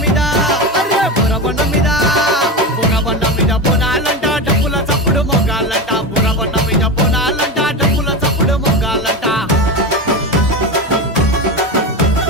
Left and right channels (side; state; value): both; normal; correlation 0.20